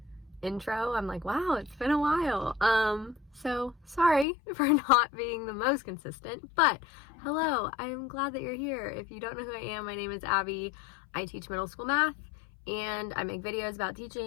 intro. I'm like, wow, it's been a while. So sorry for not being the most consistent, but hello, I'm glad that you're here. If you don't know who I am, my name is Abby. I teach middle school math and I make videos about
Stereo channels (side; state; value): right; drops out; at 4.2 s